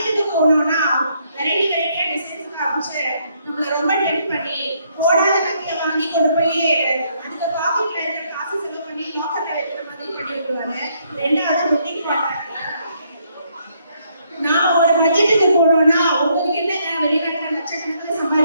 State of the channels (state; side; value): inverted; both; correlation -0.71